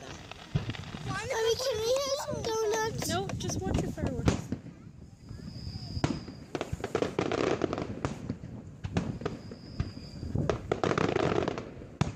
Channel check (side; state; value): both; identical; correlation 1.00